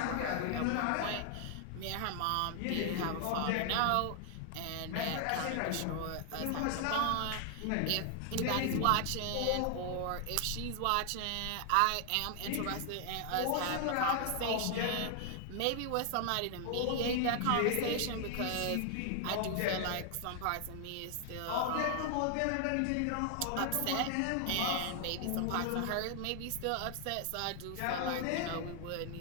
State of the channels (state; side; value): different; both; correlation 0.00